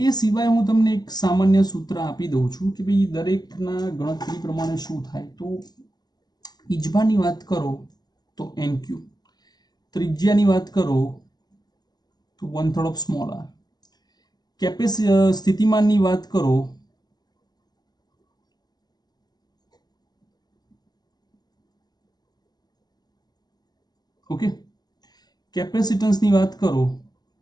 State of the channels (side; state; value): right; late; 0.20 ms